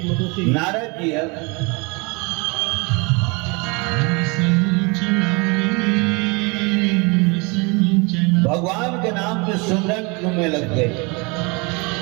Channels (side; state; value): left; quieter; 29.0 dB